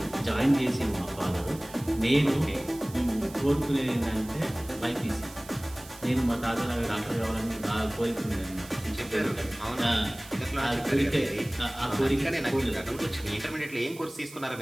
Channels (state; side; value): noise; right; hiss, 18 dB below the sound